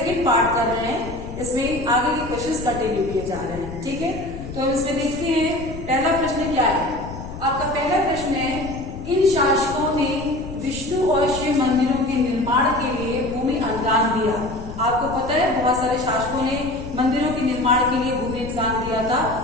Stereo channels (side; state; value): left; noise; rumble, 11 dB below the sound